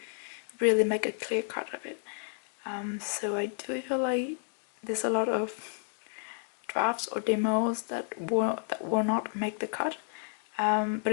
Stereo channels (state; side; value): silent; right; 57 dB below the other